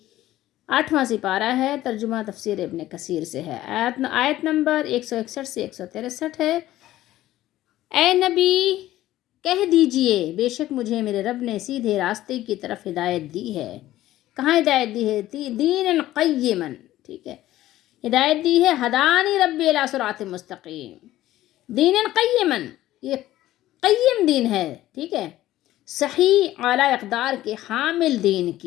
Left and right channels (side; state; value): right; quieter; 14.8 dB